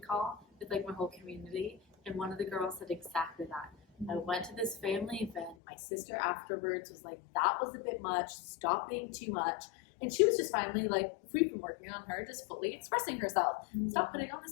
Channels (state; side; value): drops out; right; at 5.6 s